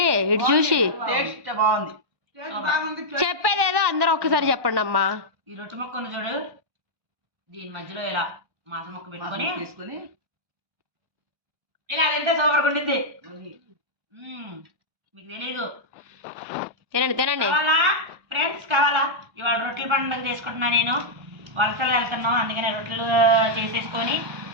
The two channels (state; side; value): late; left; 1.1 ms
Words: ఇటు చూసి. టేస్ట్ బాగుంది. చెప్పేదేదో అందరూ ఒక్కసారి చెప్పండి అమ్మా. ఈ రొట్టె మొక్క ఉంది చూడు, దీని మధ్యలో ఇలా మాసం మొక్క పెట్టుకొని తీసుకొని ఇలా తింటే సూపర్గా ఉండిద్ది. మీకు తెలీదు. తినండి కావాలా ఫ్రెండ్స్? కావాలా? ఇవాళ రొట్టెల పండుగ చేసుకుంటున్నా నేను. వలసలు వెళ్తున్నాం అందుకనే రొట్టెలు చేసేసుకొని